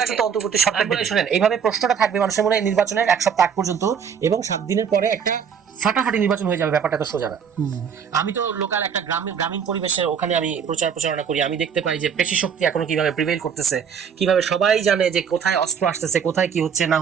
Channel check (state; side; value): quieter; left; 7.2 dB